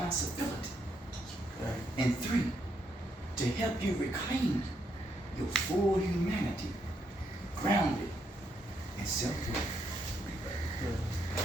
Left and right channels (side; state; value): both; normal; correlation 0.76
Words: And 3, to help you reclaim your full humanity, grounded in self-worth.